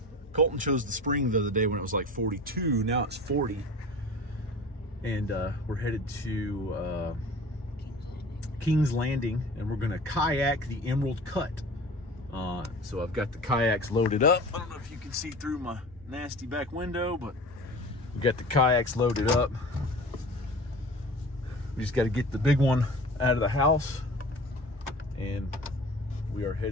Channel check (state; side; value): normal; both; correlation 0.39